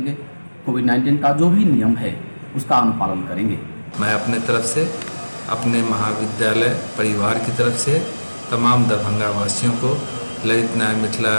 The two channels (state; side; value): inverted; both; correlation -1.00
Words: कोविड-19 का जो भी नियम है उसका अनुपालन करेंगे। मैं अपने तरफ से, अपने महाविद्यालय परिवार की तरफ से तमाम दरभंगा वासियों को, ललित नारायण मिथिला